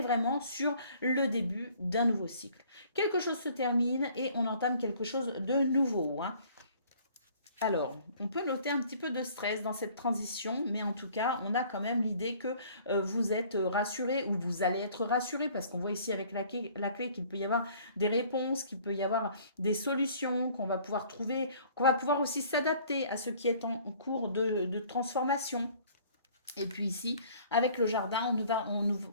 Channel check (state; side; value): inverted; both; correlation -0.55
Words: vraiment sur le début d'un nouveau cycle. Quelque chose se termine et on entame quelque chose de nouveau. Alors, on peut noter un petit peu de stress dans cette transition, mais en tout cas, on a quand même l'idée que vous êtes rassuré ou vous allez être rassuré parce qu'on voit ici avec la clé qu'il peut y avoir des réponses, qu'il peut y avoir des solutions, qu'on va pouvoir trouver, qu'on va pouvoir aussi s'adapter à ce qui est en cours de transformation. Et puis ici, avec le jardin, on